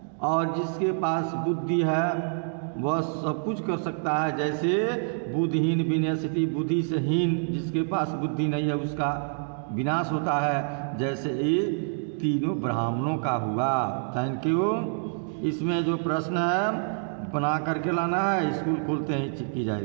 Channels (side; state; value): left; silent; digital silence